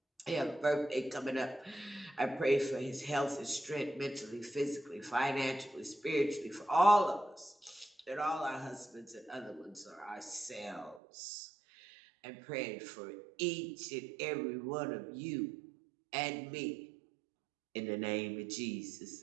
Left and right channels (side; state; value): left; drops out; at 11.0 s